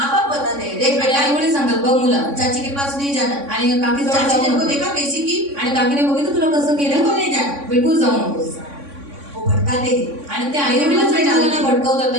बाप बताते हैं, देख बेटा आई वडील सांगतात बघ मुला, चाची के पास नहीं जाना. आणि काकी जवळ चाची जाऊ ने को नको. देखा कैसी की, आणि काकीने बघितलं तुला कसं केलं, बिल्कुल नहीं जाना. बिलकुल जाऊ नकोस. वो भटकाते हैं. आणि ते आई वडीलच मुलांना भटकवतात,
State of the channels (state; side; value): late; left; 3.6 ms